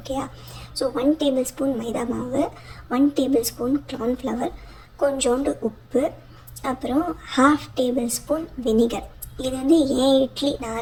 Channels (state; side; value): identical; both; correlation 1.00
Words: ஸோ 1 டேபிள் ஸ்பூன் மைதா மாவு, 1 டேபிள் ஸ்பூன் கார்ன்ஃப்ளவர், கொஞ்சோண்டு உப்பு, அப்புறம் 1/2 டேபிள் ஸ்பூன் வினிகர். இது வந்து ஏன் இட்லி